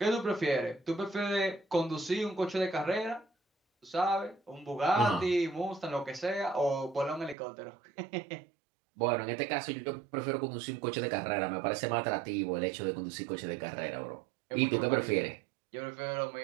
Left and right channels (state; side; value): drops out; left; at 7.4 s